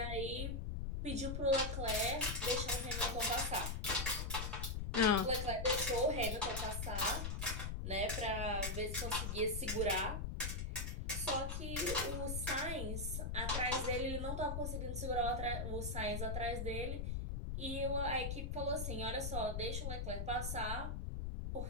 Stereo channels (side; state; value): left; noise; rumble, 2 dB below the sound